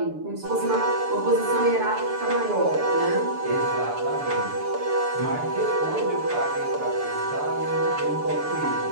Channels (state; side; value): late; left; 6.9 ms